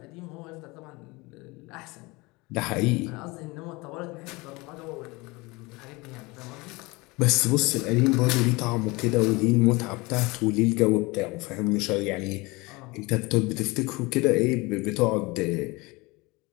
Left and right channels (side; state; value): right; quieter; 24.1 dB